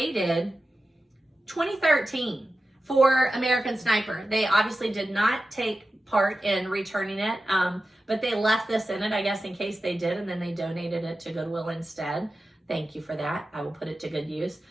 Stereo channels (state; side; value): normal; both; correlation 0.93